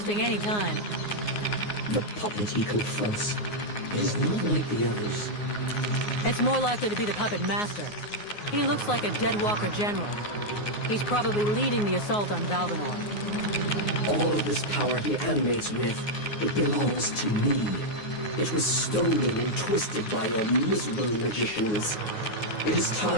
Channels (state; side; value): late; right; 9.6 ms